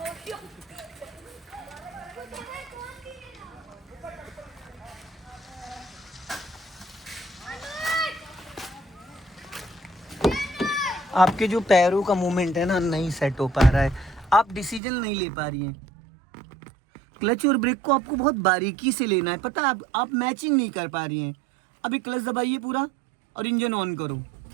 आपके जो पैरों का मूवमेंट है ना नहीं सेट हो पा रहा है, आप डिसीजन नहीं ले पा रही हैं। क्लच और ब्रेक को आपको बहुत बारीकी से लेना है, पता है आप मैचिंग नहीं कर पा रही हैं। अभी क्लच दबाइए पूरा और इंजन ऑन करो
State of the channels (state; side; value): drops out; left; at 14.8 s